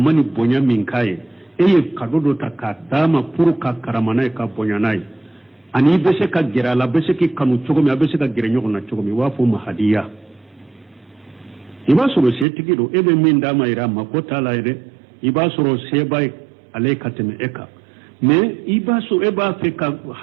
بونيا من كاي eye kadodo ta ka dama pour ka karamana ka bonyanai ani bese ka gira la bese ki kanu cogo mi bese ka gira nyogo na cogo mi wa fo mahadiya iba soro se tigido ebe min dama ira makota la ire iba soro se bay alaikateme eka me iba so eba fe ka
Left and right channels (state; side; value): drops out; left; at 12.5 s